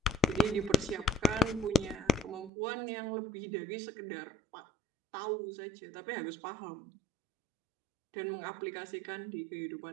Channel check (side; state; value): left; drops out; at 2.5 s